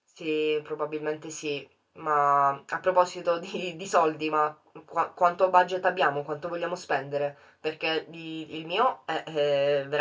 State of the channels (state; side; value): identical; both; correlation 1.00